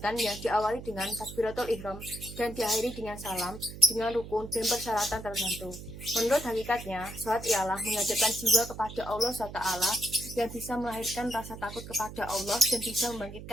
yang diawali dengan takbiratul ihram dan diakhiri dengan salam, dengan rukun dan persyaratan tertentu. Menurut hakikatnya, sholat ialah menghadapkan jiwa kepada Allah SWT yang bisa melahirkan rasa takut kepada Allah dan bisa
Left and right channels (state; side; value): noise; right; hum, 12 dB below the sound